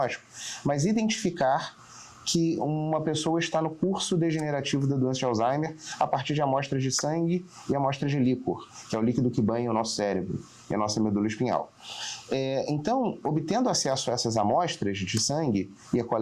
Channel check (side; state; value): both; identical; correlation 1.00